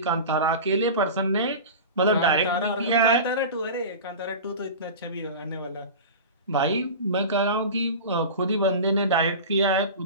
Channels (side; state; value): both; inverted; correlation -0.31